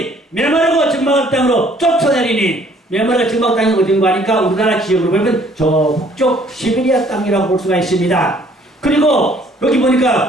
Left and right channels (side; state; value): both; normal; correlation 0.60